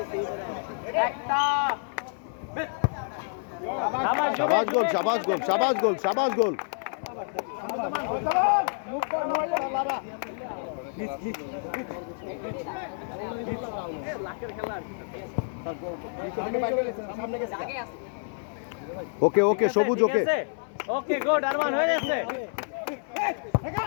शाबाश गोल शाबाश गोल शाबाश गोल शाबाश goal okay okay Sabuj okay okay good Arman हो গেছে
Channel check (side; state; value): right; silent; 59 dB below the other